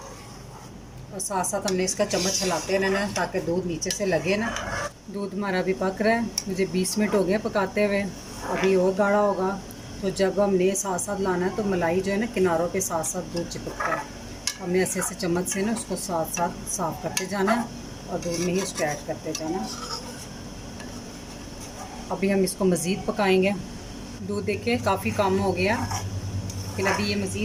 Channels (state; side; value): identical; both; correlation 1.00